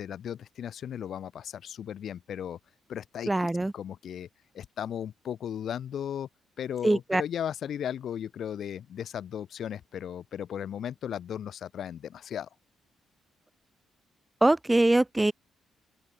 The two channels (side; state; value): both; normal; correlation 0.90